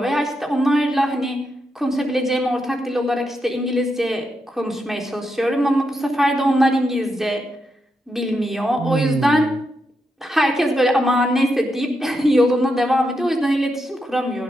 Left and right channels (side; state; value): both; normal; correlation 0.84